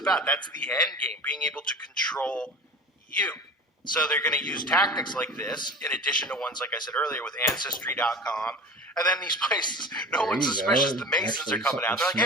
That's the end game, being able to control you. So they're going to use tactics like this, in addition to ones, like I said earlier, with Ancestry.com. And then these places, no one's suspicious. The Masons are coming out. They're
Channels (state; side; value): normal; both; correlation 0.34